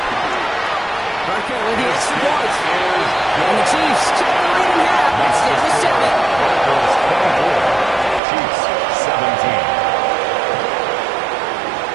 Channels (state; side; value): drops out; left; at 8.2 s